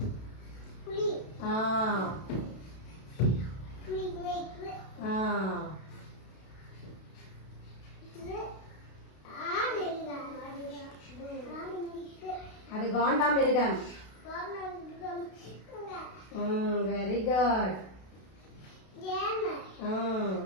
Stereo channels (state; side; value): late; right; 32 ms